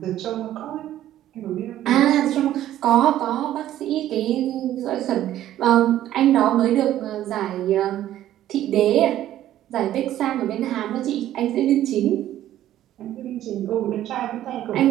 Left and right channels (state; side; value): quieter; left; 12.7 dB